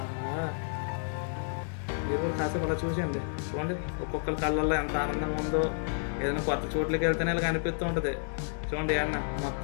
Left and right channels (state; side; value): silent; right; digital silence